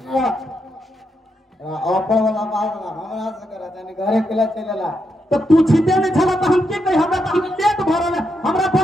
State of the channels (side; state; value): both; normal; correlation 0.82